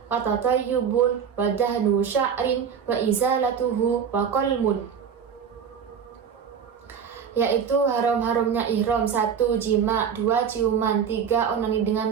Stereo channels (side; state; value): left; quieter; 7.3 dB